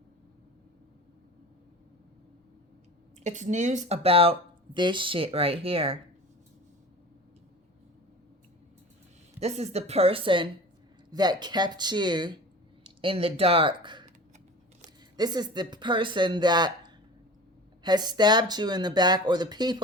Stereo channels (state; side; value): normal; both; correlation 0.37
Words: It's news about this shit right here. This is the person that kept you in the dark. This is the person that has stabbed you in the back, or the